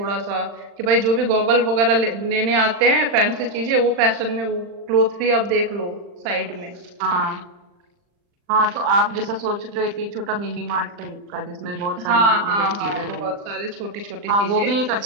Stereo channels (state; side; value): late; left; 40 ms